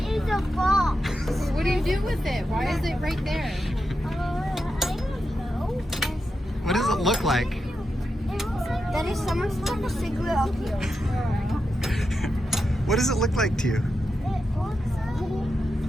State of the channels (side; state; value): both; normal; correlation 0.88